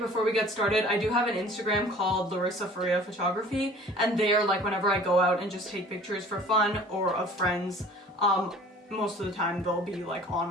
we get started, I do have an Instagram called 𝕤𝕕𝕤𝕚𝕤𝕚photography, and there, like whenever I go out and just take pictures for fun or of friends, most of the time they'll be like on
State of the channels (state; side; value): normal; both; correlation 0.48